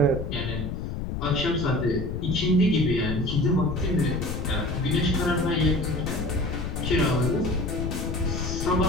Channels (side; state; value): left; noise; rumble, 4 dB below the sound